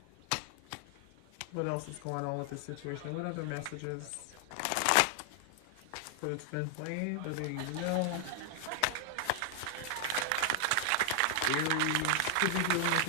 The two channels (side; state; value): both; different; correlation 0.00